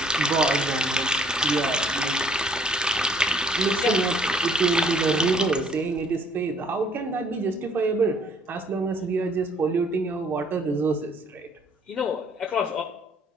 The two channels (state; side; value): normal; both; correlation 0.61